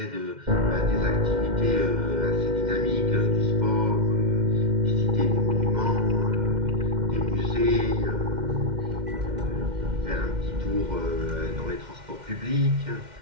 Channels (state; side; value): late; left; 2.1 ms